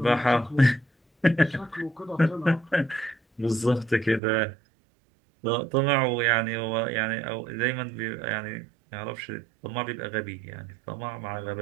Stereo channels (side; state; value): left; drops out; at 4.2 s